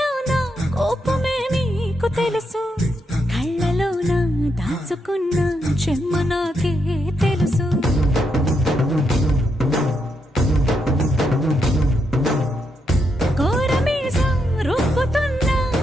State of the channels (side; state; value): both; normal; correlation 0.81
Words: కోపమే నీకు తెలుసు, కళ్ళలోన దాచుకున్న చెమ్మ నాకే తెలుసు. కోరమీసం రుబ్బుతున్న